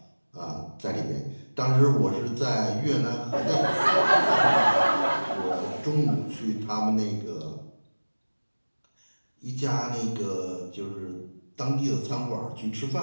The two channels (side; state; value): both; inverted; correlation -1.00